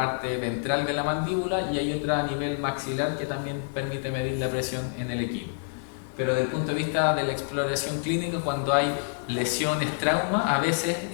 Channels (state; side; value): silent; right; digital silence